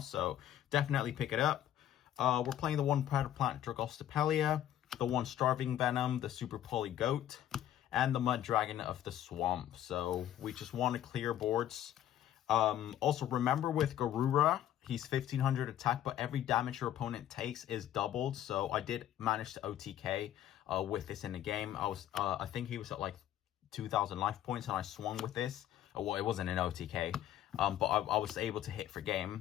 definitely pick it up. We're playing the 1 Predator Plant Dragostopelia, the 1 Starving Venom, the Super Poly Goat, and the Mud Dragon of the Swamp. So we just want to clear boards. Also, remember with Garura, he's 1500 attack, but every damage your opponent takes is doubled. So I did manage to OTK with this in the game. I think he was at like 2000 life points, and I swung with this. Well, it wasn't an OTK, but I was able to hit for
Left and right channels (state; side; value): quieter; right; 11.7 dB